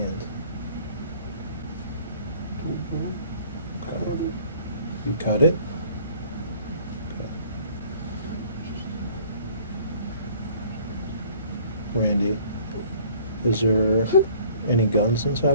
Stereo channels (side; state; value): both; inverted; correlation -0.54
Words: Okay. You cut it? Okay. Randy, is there any guns